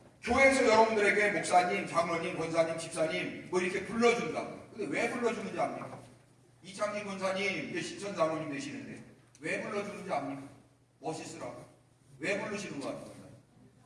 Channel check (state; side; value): identical; both; correlation 1.00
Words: 교회에서 여러분들에게 목사님, 장로님, 권사님, 집사님 뭐 이렇게 불러준다. 근데 왜 불러주는지 압니까? 이창진 권사님 이제 신천 장로님 되시는데 왜 불러주는지 압니까? 멋있으라고. 왜 부르시는 거 같아요?